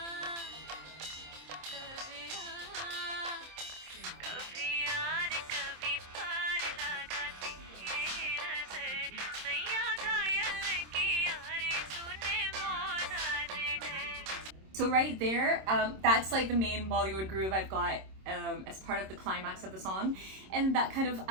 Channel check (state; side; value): late; left; 26 ms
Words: so right there, that's like the main Bollywood groove I've got as part of the climax of the song. And that kind of,